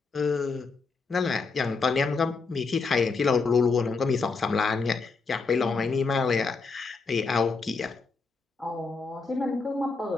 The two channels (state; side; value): quieter; right; 4.4 dB